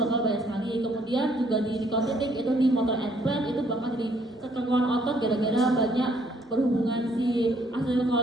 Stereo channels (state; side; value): normal; both; correlation 0.66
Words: banyak sekali. Kemudian juga di nikotinik itu di motor implant itu bakal jadi kekeruan otot gara-gara banyak berhubungan si